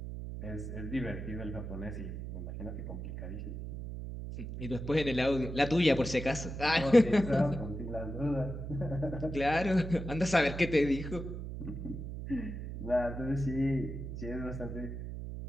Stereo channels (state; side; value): noise; right; hum, 7 dB below the sound